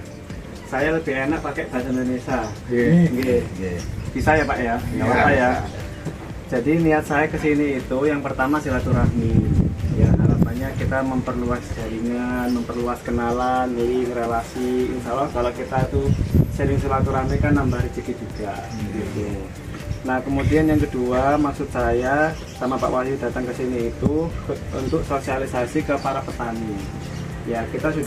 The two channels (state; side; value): identical; both; correlation 1.00